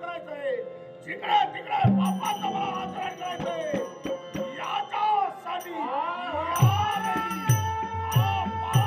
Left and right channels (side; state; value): both; identical; correlation 1.00